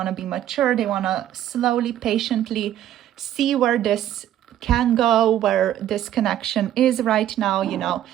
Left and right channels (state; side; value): quieter; left; 11.8 dB